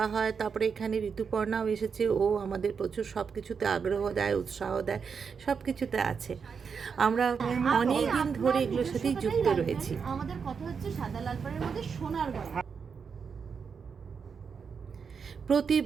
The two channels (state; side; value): quieter; left; 6.0 dB